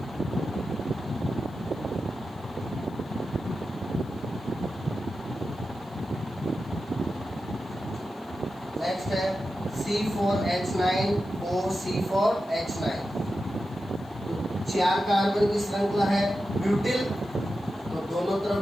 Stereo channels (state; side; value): noise; left; hiss, 29 dB below the sound